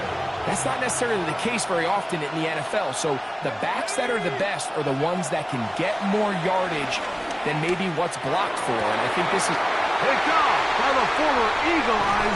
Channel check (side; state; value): both; identical; correlation 1.00